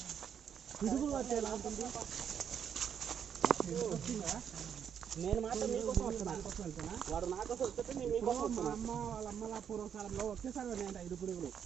పిడుగులు వచ్చేలా ఉంటుంది. నేను మాత్రం మీకోసం వస్తున్నా, వాడు నా కోసం వస్తుంటే నేను మీకోసం వస్తున్నా. అమ్మ వాళ్ళ అమ్మల పూర్వకాలంలో ఒకేసారి పడినాయంట 5 పిడుగులు.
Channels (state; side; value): quieter; left; 8.1 dB